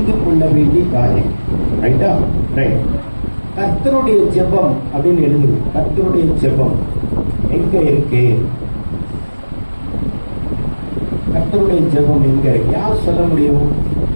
கொள்ள வேண்டிய காரியம். ரைட்டா? ரைட். கர்த்தருடைய ஜெபம் அப்படின்னு எழுதுங்க. கர்த்தருடைய ஜெபம் எங்க இருக்கு? கர்த்தருடைய ஜெபம் எங்க இருக்கு? யார் சொல்ல முடியும்?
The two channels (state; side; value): inverted; both; correlation -1.00